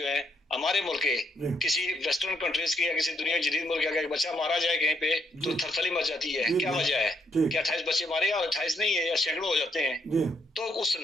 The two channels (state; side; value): normal; both; correlation 0.74